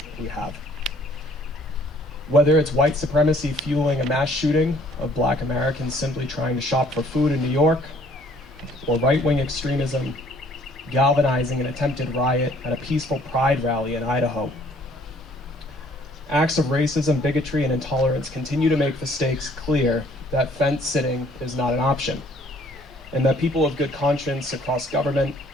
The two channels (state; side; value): normal; both; correlation 0.59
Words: we have. Whether it's white supremacy fueling a mass shooting of Black Americans simply trying to shop for food in New York, or right-wing extremism galvanizing an attempted riot at a peaceful pride rally in Idaho. Acts of racism, bigotry, and intolerance continue to make the stakes clear that fence sitting is not an option, and that people of good conscience across government,